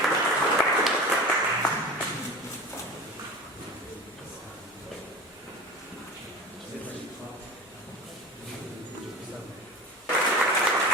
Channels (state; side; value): normal; both; correlation 0.33